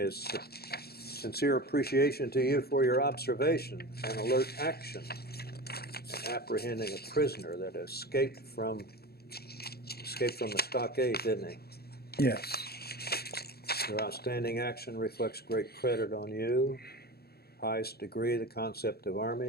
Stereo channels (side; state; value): right; late; 0.46 ms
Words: sincere appreciation to you for your observation and alert action in apprehending a prisoner that escaped from the stockade, didn't he? Yes. Your outstanding action reflects great credit on you, highest degree of the concept of